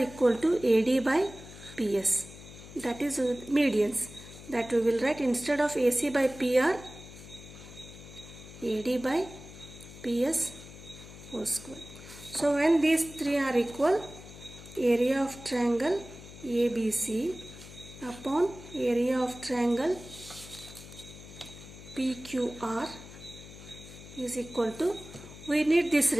to AD by PS. That is medians. That we will write instead of AC by PR, AD by PS whole square. So when these three are equal, area of triangle ABC upon area of triangle PQR is equal to, we need this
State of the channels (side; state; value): left; noise; hum, 16 dB below the sound